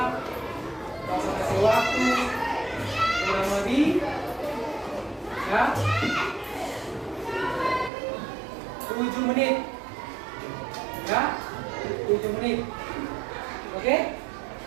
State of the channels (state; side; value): drops out; left; at 7.9 s